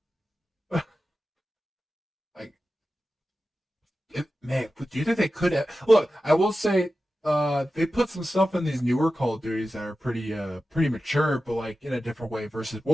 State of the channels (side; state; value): both; normal; correlation 0.93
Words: Like, man, do you think they could have? Look, I will say, they put some stuff in these newer Call of Duties that are pretty mature, but like in a different way. Versus